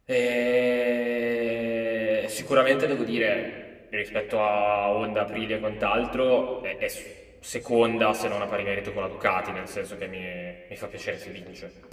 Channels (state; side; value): identical; both; correlation 1.00